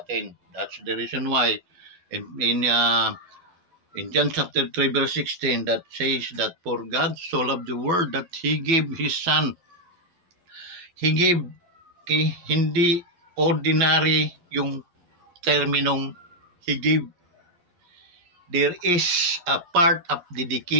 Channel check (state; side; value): late; left; 11 ms